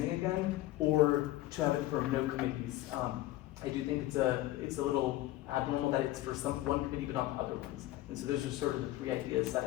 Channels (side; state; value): right; quieter; 16.3 dB